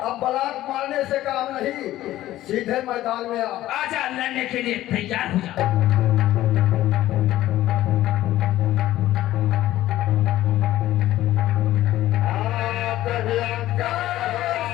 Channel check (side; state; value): right; quieter; 14.7 dB